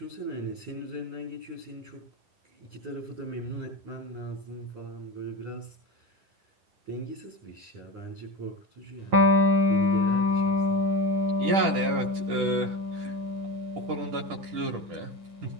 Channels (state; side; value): late; left; 10 ms